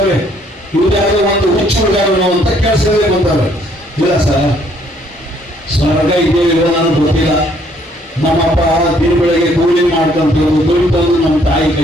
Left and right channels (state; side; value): normal; both; correlation 0.65